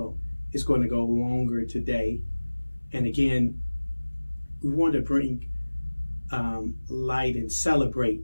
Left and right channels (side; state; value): both; inverted; correlation -1.00